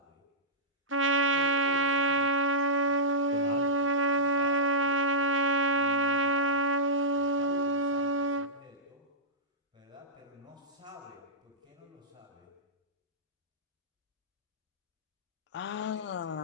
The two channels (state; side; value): normal; both; correlation -0.13